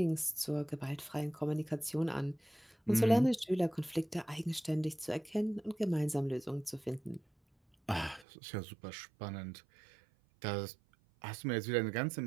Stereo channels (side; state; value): left; drops out; at 8.2 s